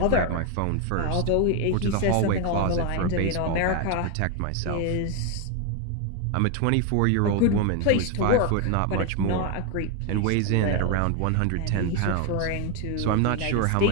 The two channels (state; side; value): different; both; correlation 0.01